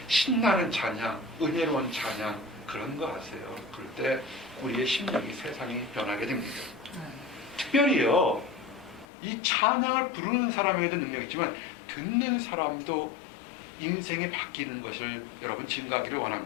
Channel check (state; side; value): drops out; right; at 9.1 s